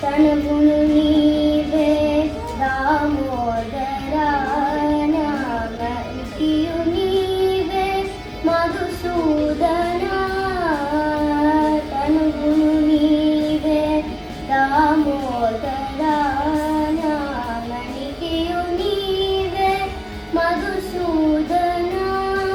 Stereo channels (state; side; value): identical; both; correlation 1.00